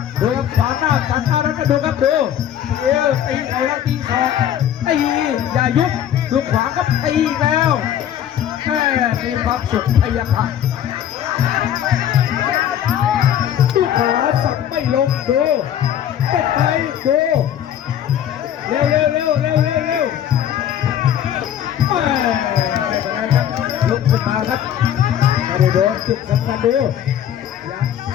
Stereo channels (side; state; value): right; quieter; 10.3 dB